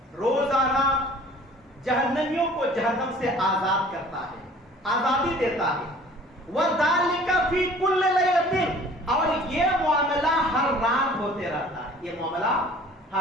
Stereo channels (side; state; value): both; normal; correlation 0.49